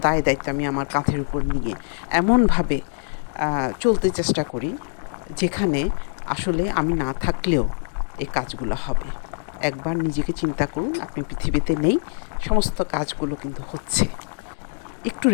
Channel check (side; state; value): right; silent; digital silence